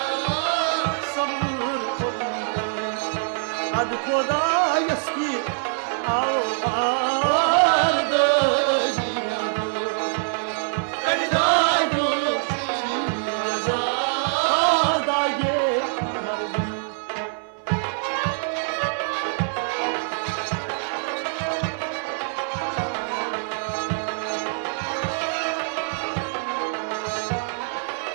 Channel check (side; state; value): left; silent; 62 dB below the other